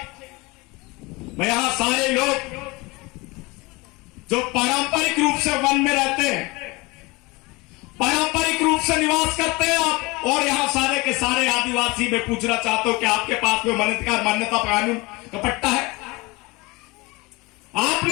में यहां सारे लोग जो पारंपरिक रूप से वन में रहते हैं, पारंपरिक रूप से निवास करते हैं आप, और यहां सारे के सारे आदिवासी में पूछना चाहता हूं कि आपके पास में वन अधिकार मान्यता कानून का पट्टा है?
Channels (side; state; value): right; quieter; 24.3 dB